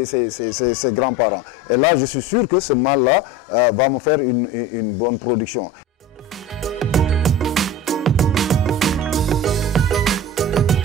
grands-parents. Et là, je suis sûr que ce mâle-là va me faire une bonne production.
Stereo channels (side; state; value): both; normal; correlation 0.33